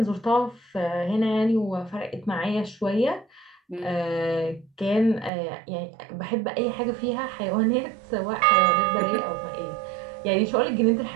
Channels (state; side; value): drops out; left; at 5.3 s